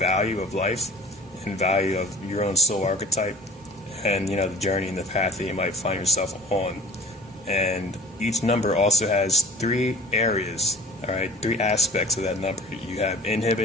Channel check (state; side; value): normal; both; correlation 0.44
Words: of life and value of your own soul archetype and the journey and the path that you might find yourself on. And each number also has 3 areas, alright, 3 aspects of that number. You have